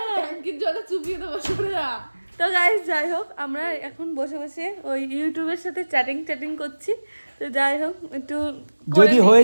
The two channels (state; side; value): inverted; both; correlation -1.00